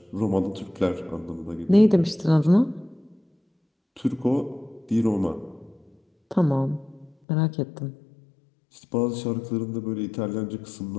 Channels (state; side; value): drops out; right; at 7.2 s